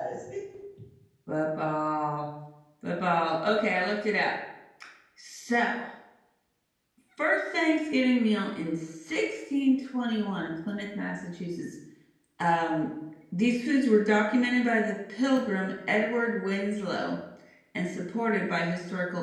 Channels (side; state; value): both; identical; correlation 1.00